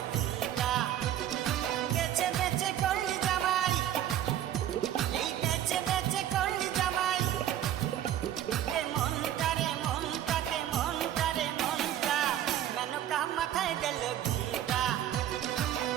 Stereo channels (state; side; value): quieter; left; 11.4 dB